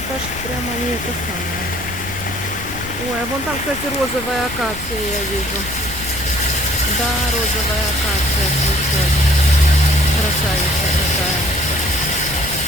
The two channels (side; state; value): left; noise; rumble, 12 dB below the sound